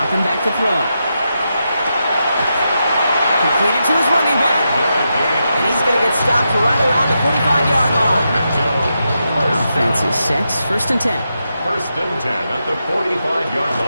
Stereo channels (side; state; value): both; inverted; correlation -0.86